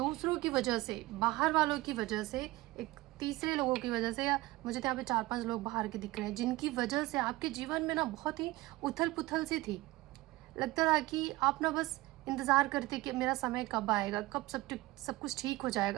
की वजह से, बाहर वालों की वजह से, एक तीसरे लोगों की वजह से, या मुझे तो यहाँ पे 4-5 लोग बाहर के दिख रहे हैं जिनकी वजह से आपके जीवन में ना बहुत ही उथल पुथल सी थी। लगता था कि आप ना बस इंतज़ार करते कि मेरा समय कब आएगा, कब सब कुछ ठीक हो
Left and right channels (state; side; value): quieter; left; 19.5 dB